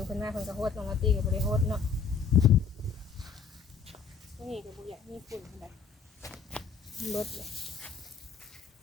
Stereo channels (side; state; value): right; quieter; 5.9 dB